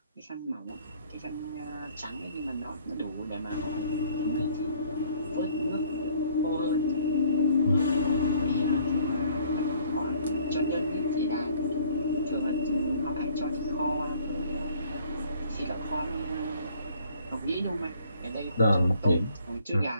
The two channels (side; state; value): both; inverted; correlation -0.58